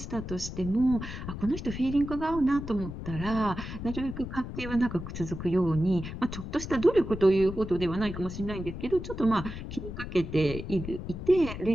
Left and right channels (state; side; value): noise; left; rumble, 8 dB below the sound